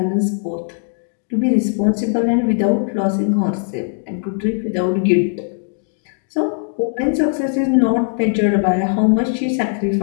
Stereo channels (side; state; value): right; silent; digital silence